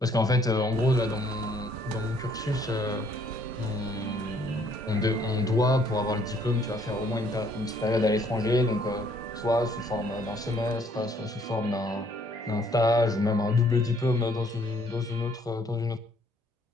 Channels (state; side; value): normal; both; correlation 0.64